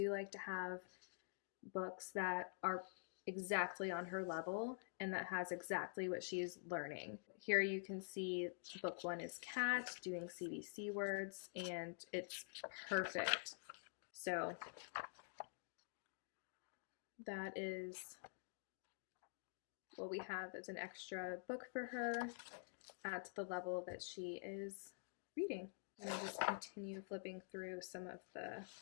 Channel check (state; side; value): silent; right; digital silence